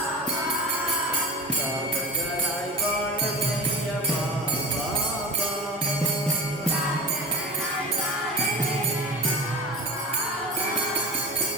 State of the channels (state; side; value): normal; both; correlation 0.30